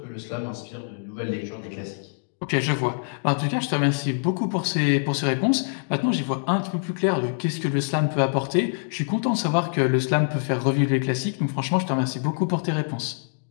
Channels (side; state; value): right; silent; digital silence